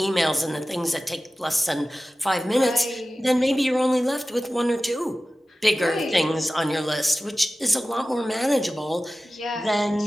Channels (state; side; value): normal; both; correlation 0.95